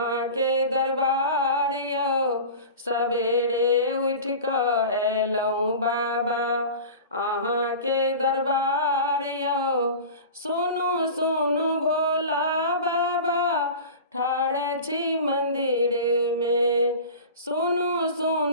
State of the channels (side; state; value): both; inverted; correlation -0.35